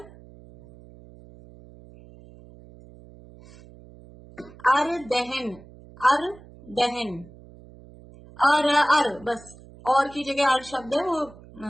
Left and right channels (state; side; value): noise; right; hum, 21 dB below the sound